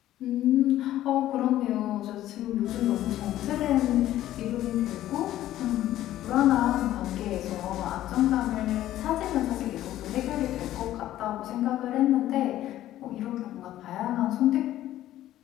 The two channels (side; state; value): right; quieter; 13.5 dB